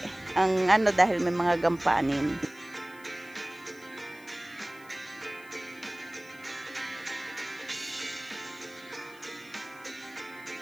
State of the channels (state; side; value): noise; left; hiss, 25 dB below the sound